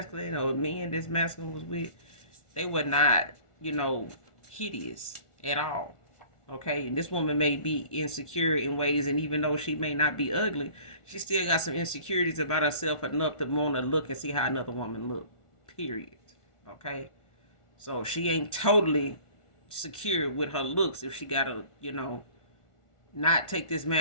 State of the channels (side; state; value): right; late; 1.4 ms